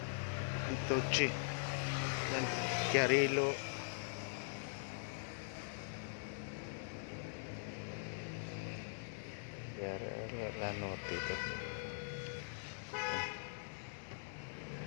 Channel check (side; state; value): right; silent; digital silence